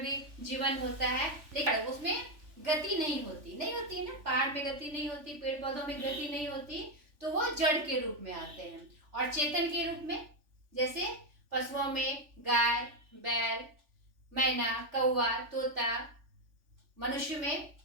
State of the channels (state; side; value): late; left; 3.4 ms